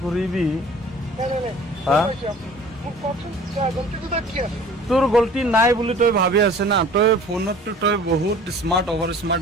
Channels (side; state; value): both; normal; correlation 0.47